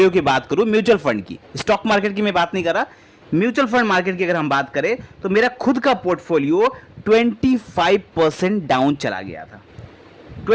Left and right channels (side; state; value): both; identical; correlation 1.00